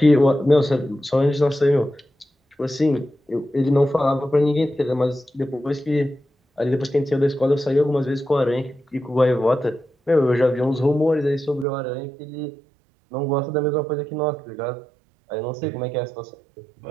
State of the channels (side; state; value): left; drops out; at 11.7 s